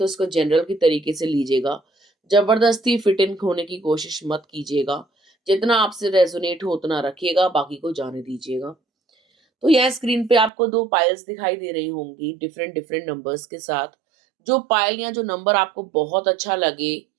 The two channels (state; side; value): drops out; left; at 10.5 s